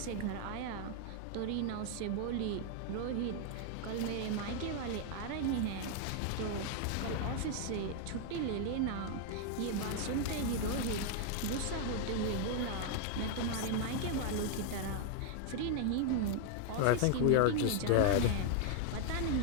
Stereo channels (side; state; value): both; different; correlation 0.00